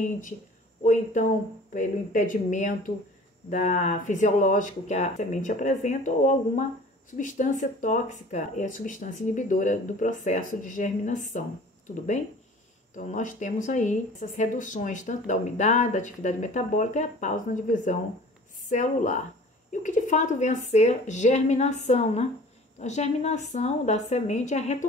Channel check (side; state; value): both; normal; correlation 0.46